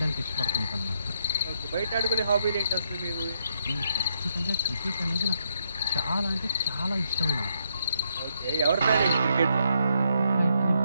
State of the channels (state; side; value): inverted; both; correlation -0.76